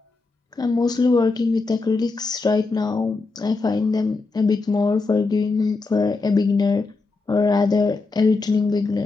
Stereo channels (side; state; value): right; quieter; 3.8 dB